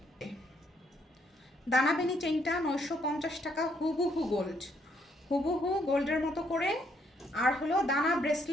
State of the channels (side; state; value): both; normal; correlation 0.71